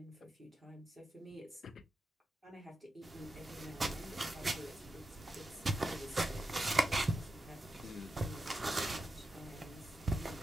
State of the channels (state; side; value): normal; both; correlation 0.89